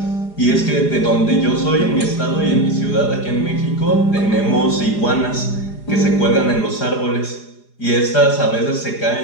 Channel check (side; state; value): right; late; 4.9 ms